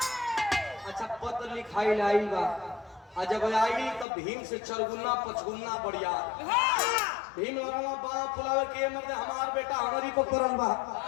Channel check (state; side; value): drops out; right; at 4.0 s